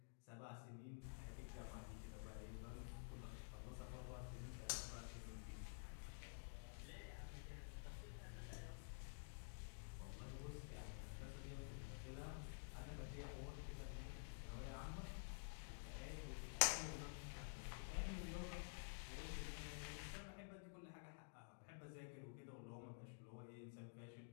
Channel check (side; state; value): right; silent; digital silence